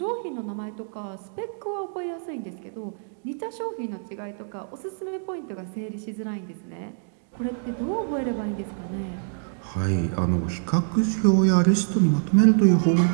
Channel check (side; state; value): left; silent; digital silence